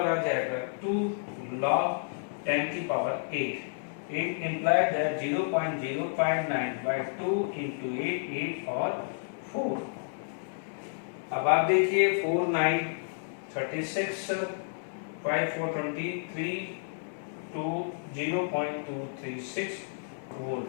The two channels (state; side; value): silent; right; 57 dB below the other